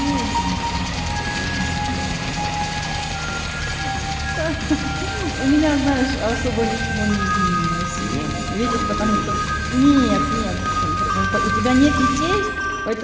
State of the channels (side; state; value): both; identical; correlation 1.00